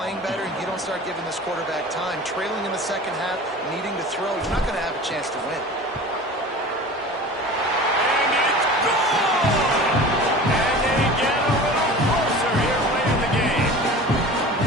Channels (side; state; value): both; normal; correlation 0.38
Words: better, you don't start giving this quarterback time, trailing in the second half, needing to throw, you're not going to have a chance to win.